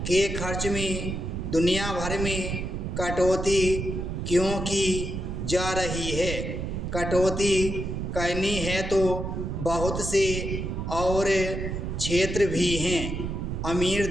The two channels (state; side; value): noise; right; rumble, 4 dB below the sound